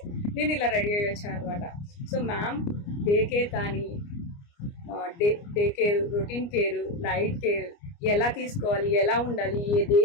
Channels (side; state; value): right; late; 29 ms